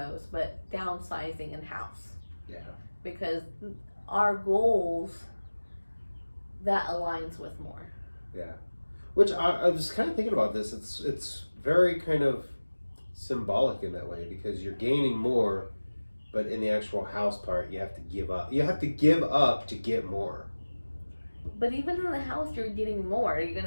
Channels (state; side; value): inverted; both; correlation -1.00